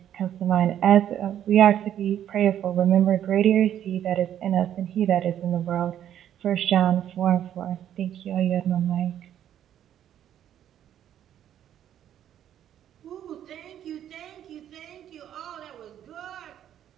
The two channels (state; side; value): quieter; left; 10.6 dB